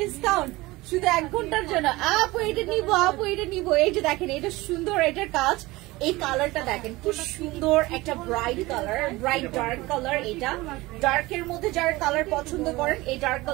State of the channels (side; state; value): left; quieter; 20.5 dB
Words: শুধু 1 ঘন্টার জন্য? আপু এটা নিবো, আপু এটা নিবো। এই যে দেখেন, এটা সুন্দর, এটার কাজ। এই কালারটা দেখেন কি সুন্দর, একটা bright colour, bright dark colour. এটা ডার্কের মধ্যে যারা কালার পছন্দ করেন এই ডার্ক